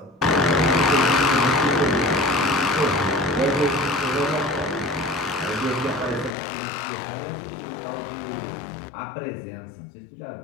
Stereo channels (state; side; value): drops out; right; at 6.3 s